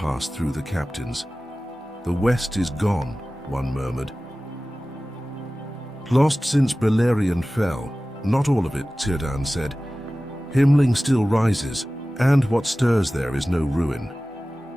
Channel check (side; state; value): both; normal; correlation 0.97